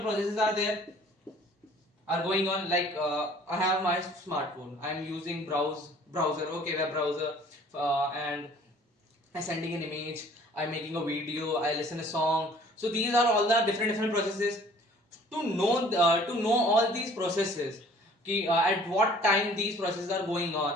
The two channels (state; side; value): normal; both; correlation 0.53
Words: processes are going on, like I have my smartphone, I am using browser, okay, web browser, and I sending an image, I'm making a video, I listen a song. So these are all the different processes. To know all these processes, at what time these processes are going